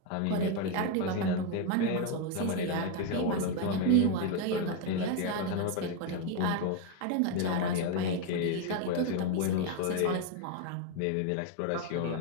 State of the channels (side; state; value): both; different; correlation 0.02